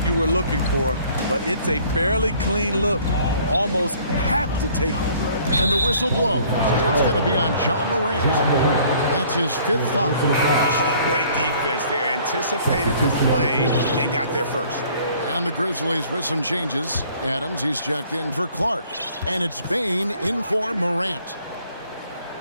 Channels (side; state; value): both; inverted; correlation -0.57